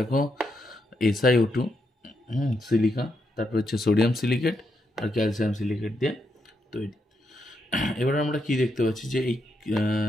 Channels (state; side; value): normal; both; correlation 0.81